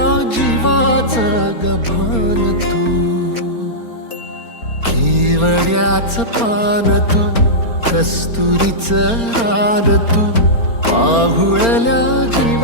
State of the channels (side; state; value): right; late; 4.3 ms